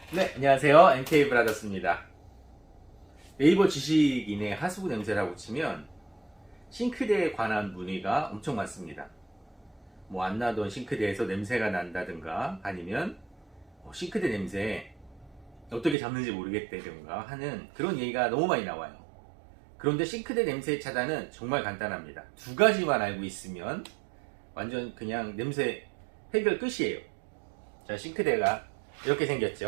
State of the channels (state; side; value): drops out; left; at 16.0 s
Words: 네, 안녕하세요. MK 브라더스입니다. 네이버 지식인의 하수구 냄새라고 치면 싱크대에 관한 문의가 엄청 많습니다. 뭐 안 나던 싱크대에서 냄새가 난다든가 아니면 싱크대 냄새 어떻게 잡는지 모르겠다든가 하는 그런 얘기가 너무 많이 나와요. 그런데 싱크대 냄새 차단은 정말 간단합니다. 두 가지만 알고 있으면 완전 그냥 냄새 해결 끝이에요. 자, 싱크대가 이렇게